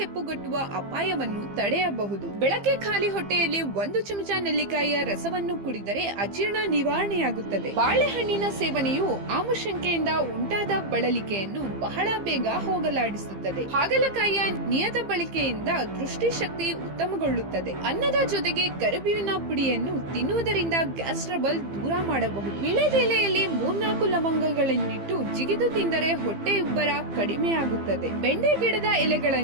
ಅಪಾಯವನ್ನು ತಡೆಯಬಹುದು. ಬೆಳಗ್ಗೆ ಖಾಲಿ ಹೊಟ್ಟೆಯಲ್ಲಿ 1 ಚಮಚ ನೆಲ್ಲಿಕಾಯಿಯ ರಸವನ್ನು ಕುಡಿದರೆ ಅಜೀರ್ಣ ನಿವಾರಣೆಯಾಗುತ್ತದೆ. ಬಾಳೆಹಣ್ಣಿನ ಸೇವನೆಯು ಆಮಶಂಕೆಯಿಂದ ಉಂಟಾದ ಬಳಲಿಕೆಯನ್ನು ಬಹಳ ಬೇಗ ಹೋಗಲಾಡಿಸುತ್ತದೆ. ಹಾಗಲಕಾಯಿಯ ನಿಯತ ಬಳಕೆಯಿಂದ ದೃಷ್ಟಿಶಕ್ತಿ ಉತ್ತಮಗೊಳ್ಳುತ್ತದೆ. ಅನ್ನದ ಜೊತೆಗೆ ಕರಿಬೇವಿನ ಪುಡಿಯನ್ನು ತಿನ್ನುವುದರಿಂದ ಗ್ಯಾಸ್ ಟ್ರಬಲ್ ದೂರ ಮಾಡಬಹುದು. ವಿಳೆದೆಲೆಯಲ್ಲಿ 3-4 ಲವಂಗಗಳನ್ನಿಟ್ಟು ಜಿಗಿದು ತಿಂದರೆ ಹೊಟ್ಟೆ ಉಬ್ಬರ ಕಡಿಮೆಯಾಗುತ್ತದೆ. ಬೆಂಡೆ ಗಿಡದ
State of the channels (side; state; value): left; late; 15 ms